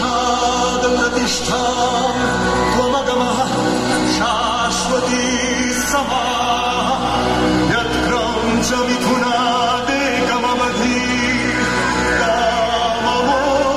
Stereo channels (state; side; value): identical; both; correlation 1.00